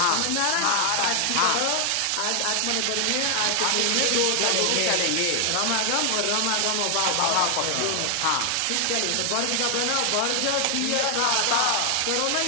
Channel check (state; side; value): different; both; correlation 0.00